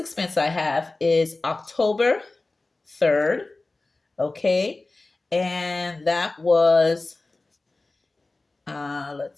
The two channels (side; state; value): right; quieter; 3.3 dB